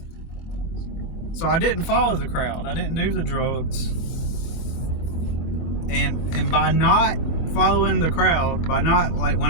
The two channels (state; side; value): late; right; 23 ms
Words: I didn't follow the crowd. I didn't do the drugs. And by not following the crowd, by not, like, when